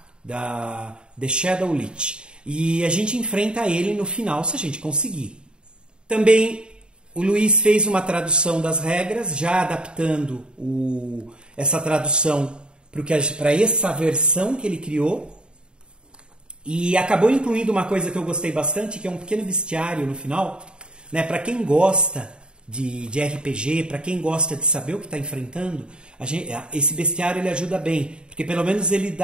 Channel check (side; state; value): left; late; 0.051 ms